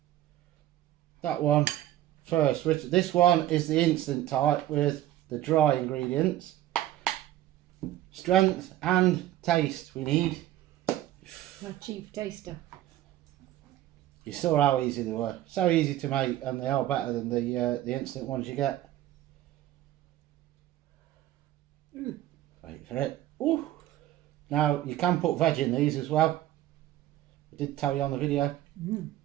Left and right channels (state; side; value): quieter; left; 13.7 dB